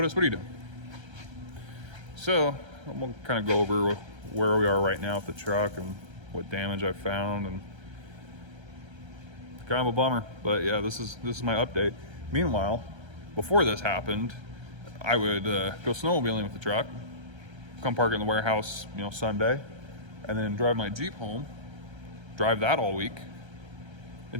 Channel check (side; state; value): left; late; 1.3 ms